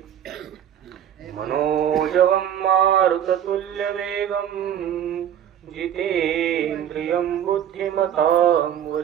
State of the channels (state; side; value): quieter; left; 9.9 dB